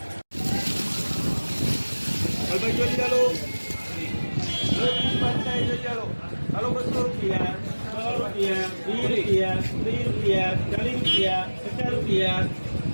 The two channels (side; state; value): both; inverted; correlation -1.00